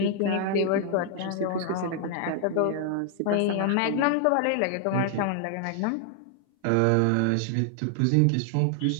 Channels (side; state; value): both; different; correlation 0.00